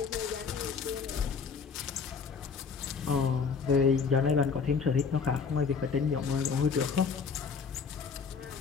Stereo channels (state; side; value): quieter; right; 5.6 dB